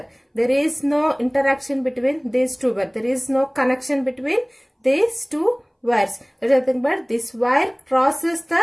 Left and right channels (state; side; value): identical; both; correlation 1.00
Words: There is no interaction between these two wires. There is no connection between these two wires. There is nothing but this wire crosses